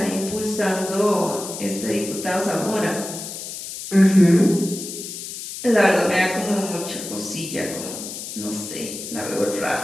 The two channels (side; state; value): left; noise; hiss, 9 dB below the sound